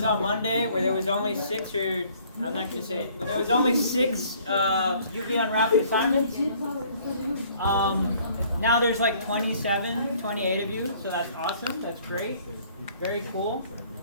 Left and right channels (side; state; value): both; inverted; correlation -0.58